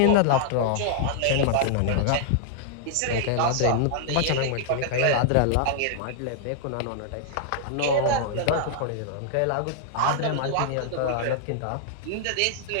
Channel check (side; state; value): both; different; correlation -0.01